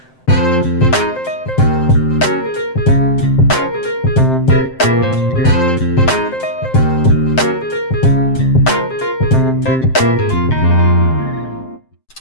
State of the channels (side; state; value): right; late; 7.7 ms